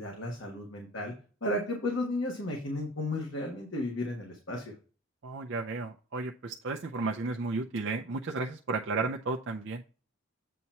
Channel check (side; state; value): both; normal; correlation 0.38